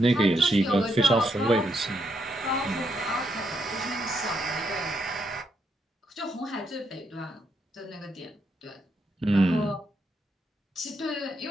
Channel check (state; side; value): normal; both; correlation 0.78